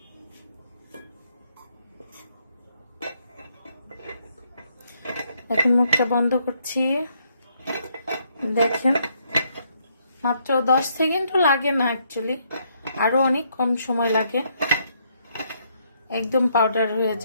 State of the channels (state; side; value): inverted; both; correlation -0.73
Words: এখন মুখটা বন্ধ করছি। দেখেন, মাত্র 10 সেকেন্ডও লাগে না, অ্যাকচুয়ালি আরো অনেক কম সময় লাগে, একদম পাউডার হয়ে